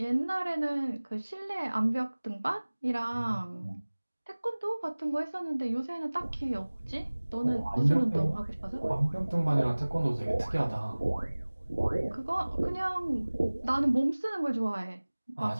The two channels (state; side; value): inverted; both; correlation -1.00